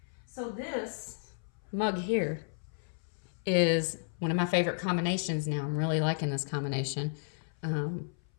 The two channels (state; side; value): silent; right; 56 dB below the other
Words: so this mug here is one of my favorite combinations now. I'm really liking this combination.